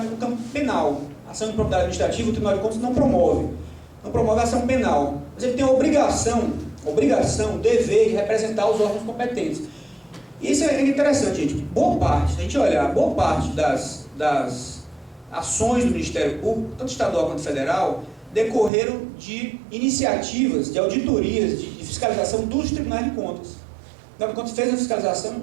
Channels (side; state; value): left; drops out; at 18.7 s